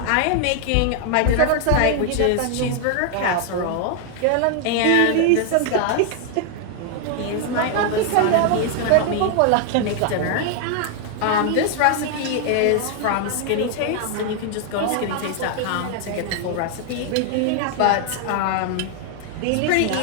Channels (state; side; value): different; both; correlation 0.00